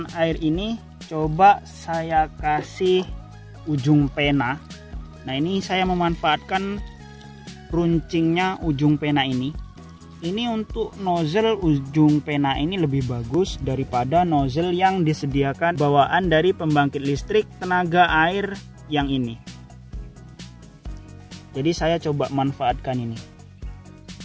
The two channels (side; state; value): both; identical; correlation 1.00